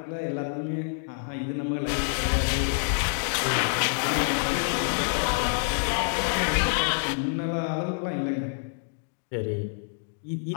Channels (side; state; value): right; silent; digital silence